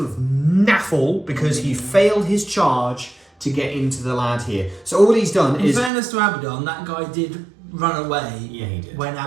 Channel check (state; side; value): drops out; left; at 5.9 s